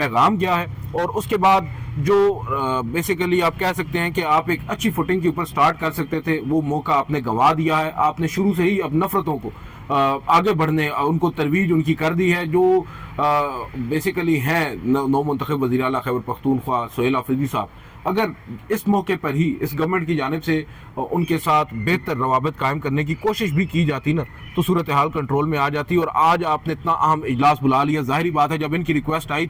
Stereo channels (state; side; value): identical; both; correlation 1.00